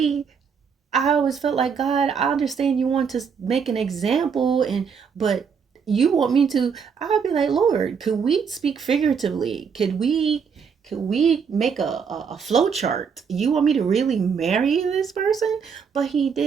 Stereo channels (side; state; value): left; quieter; 6.4 dB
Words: always felt like, God, I understand you want to make an example, but you want me to, I'll be like, Lord, could we speak figuratively? Could we make a flow chart? You want me to really marry this person? But he